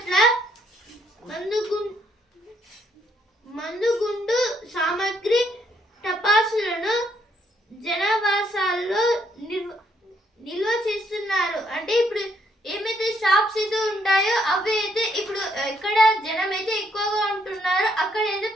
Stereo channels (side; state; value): both; normal; correlation 0.71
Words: మందుగుండు సామాగ్రి టపాసులను జనాభా